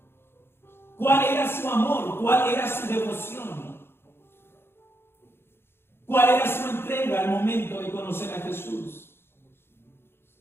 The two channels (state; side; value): late; right; 0.11 ms